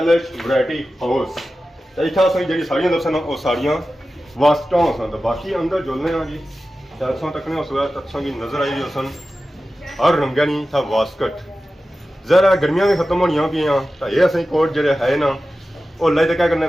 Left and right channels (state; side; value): normal; both; correlation 0.94